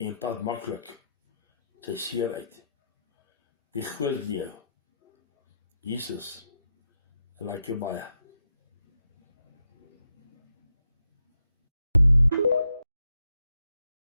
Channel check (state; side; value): inverted; both; correlation -0.82